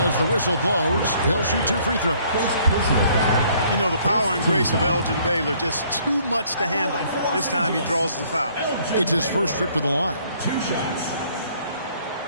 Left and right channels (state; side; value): inverted; both; correlation -0.62